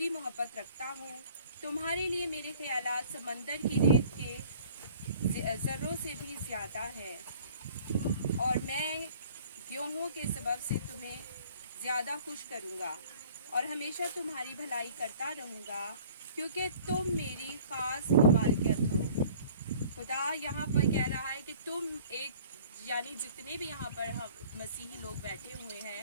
محبت رکھتا ہوں. تمہارے لیے میرے خیالات سمندر کی ریت کے ذروں سے بھی زیادہ ہے، اور میں گیہوں کے سبب سے تمہیں زیادہ خوش کروں گا اور ہمیشہ تمہاری بھلائی کرتا رہوں گا، کیونکہ تم میری خاص مملکت ہو. خدا یہاں پر کہہ رہا ہے کہ تم یعنی جتنے بھی یہاں پر مسیحی لوگ بیٹھے ہوئے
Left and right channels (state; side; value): inverted; both; correlation -0.51